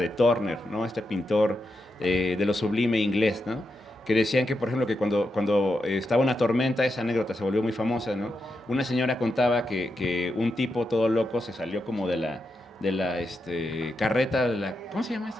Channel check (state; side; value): normal; both; correlation 0.86